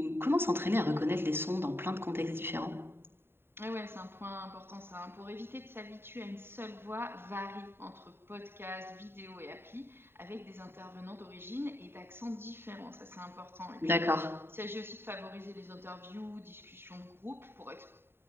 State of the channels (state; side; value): late; left; 0.11 ms